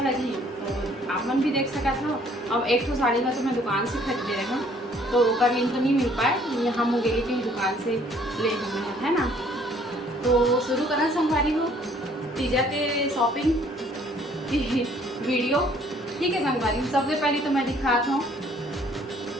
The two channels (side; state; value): both; normal; correlation 0.60